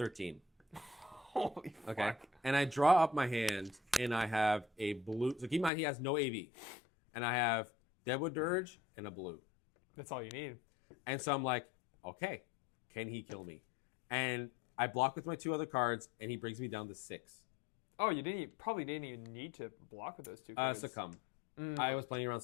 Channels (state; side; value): drops out; right; at 5.7 s